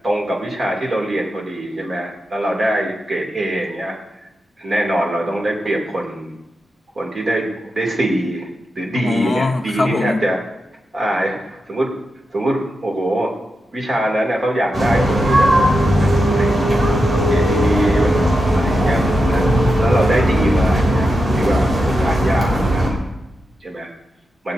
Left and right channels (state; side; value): normal; both; correlation 0.88